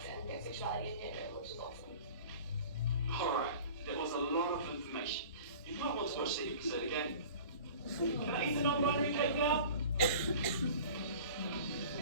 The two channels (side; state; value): both; inverted; correlation -0.42